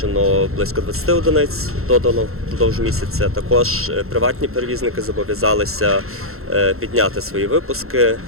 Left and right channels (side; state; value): left; late; 0.62 ms